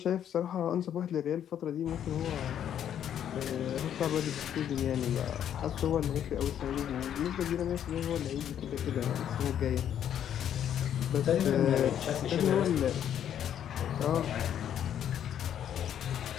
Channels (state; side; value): quieter; right; 9.8 dB